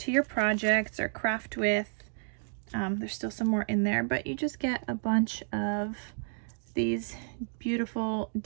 your projects or craft with. There's still some more in there, but you just get a bunch of these beautiful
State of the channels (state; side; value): silent; left; 57 dB below the other